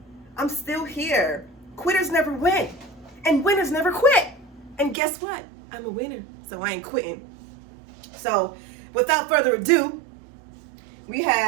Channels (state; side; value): drops out; left; at 5.0 s